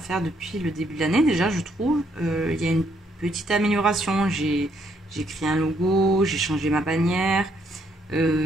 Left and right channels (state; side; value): normal; both; correlation 0.71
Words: depuis le début de l'année déjà, je trouve. Il y a une petite amélioration. J'ai créé un logo, j'ai changé ma bannière.